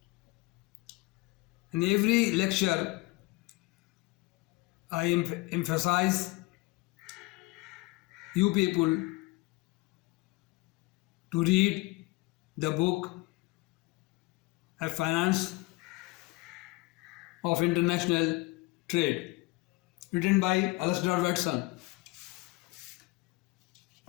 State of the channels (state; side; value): quieter; right; 22.4 dB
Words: In every lecture, I emphasize you people to read the book A Finance of International Trade, written by Alasdair Watson.